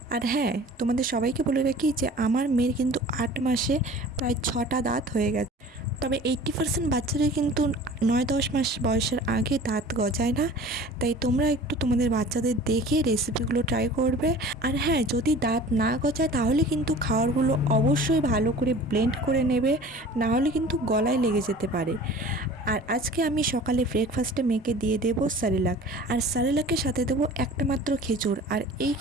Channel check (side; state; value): both; normal; correlation 0.43